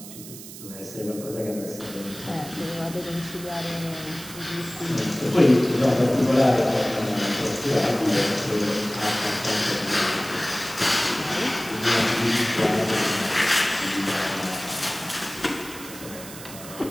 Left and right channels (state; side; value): noise; right; hiss, 14 dB below the sound